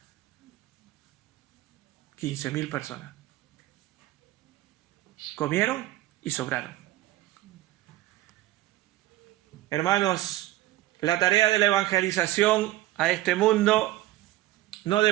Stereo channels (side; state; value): left; quieter; 16.0 dB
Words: 15.000 personas. Comieron y sobraron. Hermanos, la tarea de la evangelización a este mundo no